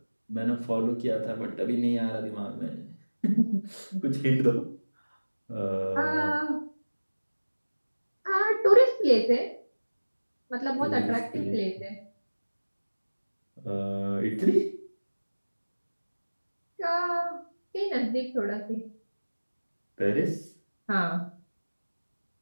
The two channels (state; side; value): inverted; both; correlation -1.00